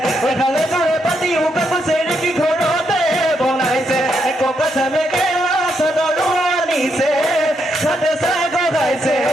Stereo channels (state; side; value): normal; both; correlation 0.79